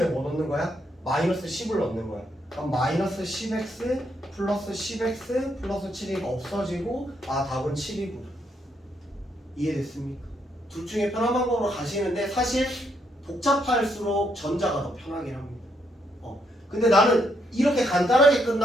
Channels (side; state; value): both; normal; correlation 0.75